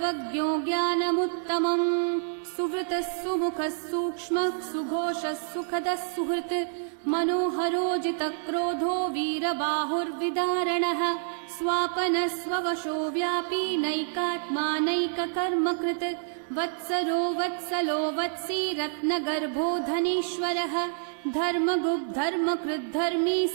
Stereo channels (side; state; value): left; silent; 59 dB below the other